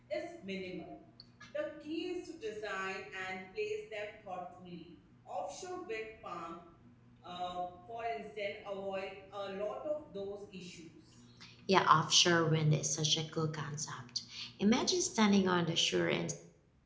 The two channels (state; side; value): identical; both; correlation 1.00